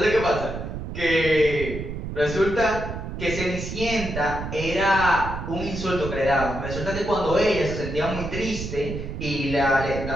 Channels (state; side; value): noise; right; rumble, 7 dB below the sound